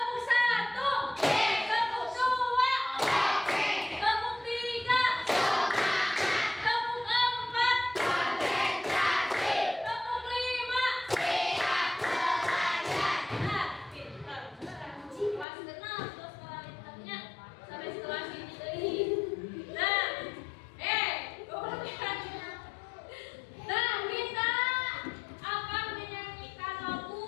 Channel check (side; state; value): right; drops out; at 15.5 s